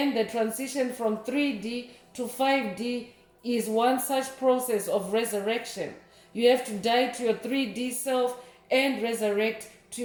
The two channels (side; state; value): both; identical; correlation 1.00